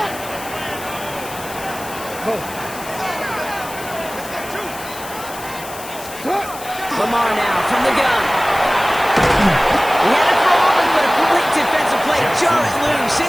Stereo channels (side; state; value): left; noise; hiss, 14 dB below the sound